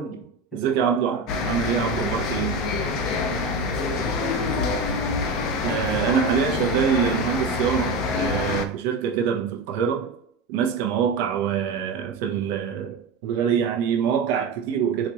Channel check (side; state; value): left; quieter; 3.2 dB